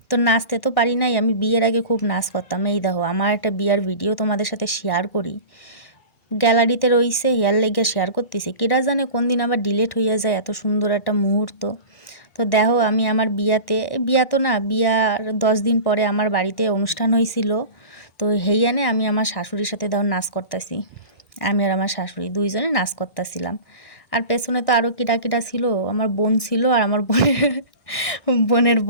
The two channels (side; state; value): right; late; 1.6 ms